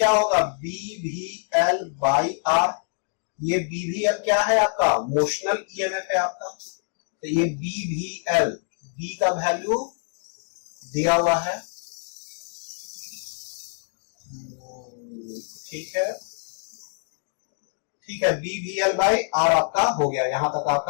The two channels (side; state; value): right; silent; digital silence